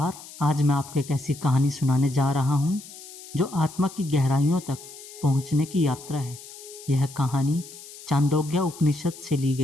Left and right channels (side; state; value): left; noise; hiss, 16 dB below the sound